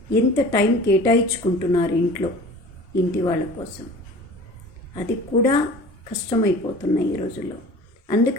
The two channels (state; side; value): normal; both; correlation 0.42